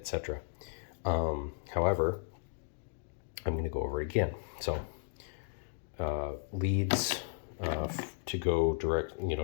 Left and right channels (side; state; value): right; silent; digital silence